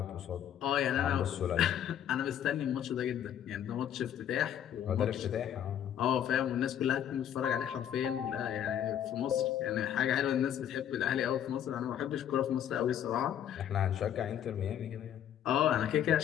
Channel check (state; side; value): quieter; right; 10.0 dB